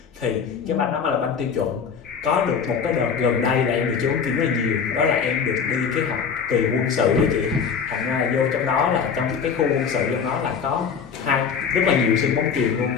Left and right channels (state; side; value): quieter; right; 6.5 dB